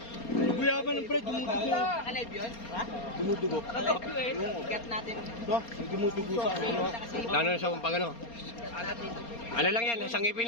Guyaban ng pre, dumudugo. Naka-live yun? Ha? Dumudugo. Naka-live yun eh. Ikat natin. Ito, may dumudugo sa ano. Lalo na sa pag ano. Ano lang yan, sangipin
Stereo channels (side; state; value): right; late; 4.3 ms